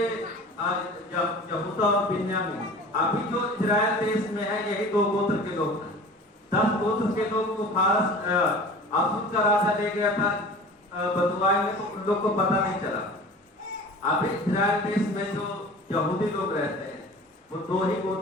यहूदा और बिन्यामीन, अभी जो इजराइल देश में है, यही 2 गोत्र के लोग हैं। 10 गोत्र के लोग को फारस असूर का राजा ले गया था बंधुआई में, तो उन लोग को पता नहीं चला। अभी इजराइल देश में जो यहूदी लोग रहते हैं वो 2 ही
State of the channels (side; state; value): both; normal; correlation 0.41